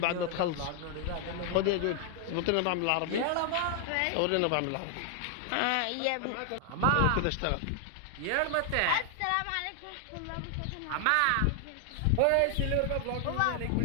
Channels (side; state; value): both; different; correlation 0.00